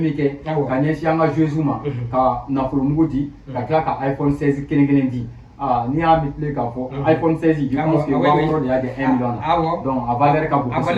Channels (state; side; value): identical; both; correlation 1.00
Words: kɛ ka ɲɛsin an ka joueurs ma ka nafolo mugu di ka tila ka iPhone 16 kelen kelen di n'i y'a multiplier k'a fɔ iPhone 16 je pense que waa wɔɔrɔ de y'a di 1 million na donc a valeur ka bon